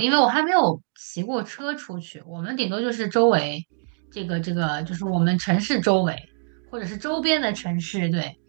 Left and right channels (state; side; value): silent; left; 59 dB below the other